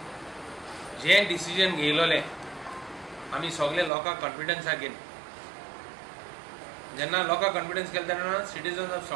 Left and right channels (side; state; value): left; drops out; at 3.9 s